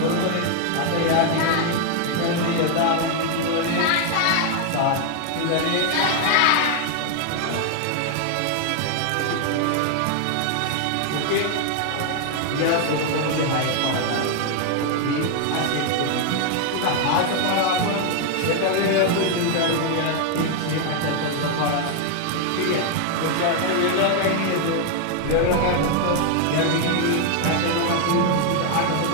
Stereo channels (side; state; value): both; different; correlation 0.00